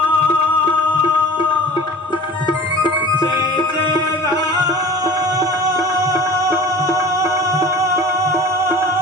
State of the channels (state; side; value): normal; both; correlation 0.41